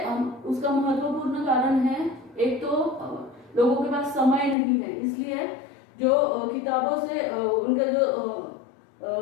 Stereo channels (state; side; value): drops out; right; at 4.5 s